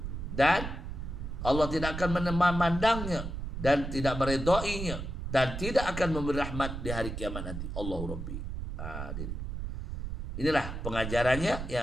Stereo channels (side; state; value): right; noise; rumble, 6 dB below the sound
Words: dan Allah tidak akan memandangnya dan tidak meredainya dan tidak akan memberi rahmat di hari kiamat nanti. Allahu Rabbi. Inilah pengajarannya.